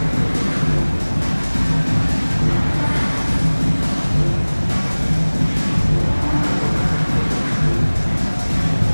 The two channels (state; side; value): inverted; both; correlation -1.00